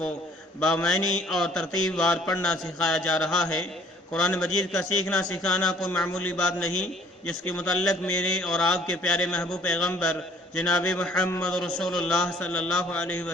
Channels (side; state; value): both; normal; correlation 0.57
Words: بامعنی اور ترتیب وار پڑھنا سکھایا جا رہا ہے۔ قرآن مجید کا سیکھنا سکھانا کوئی معمولی بات نہیں، جس کے متعلق میرے اور آپ کے پیارے محبوب پیغمبر جناب محمد رسول اللہ صلی اللہ علیہ